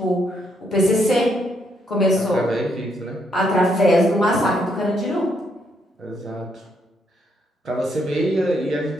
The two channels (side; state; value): both; normal; correlation 0.75